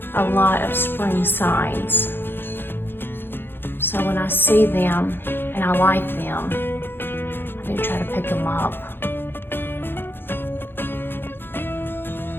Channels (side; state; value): right; late; 0.10 ms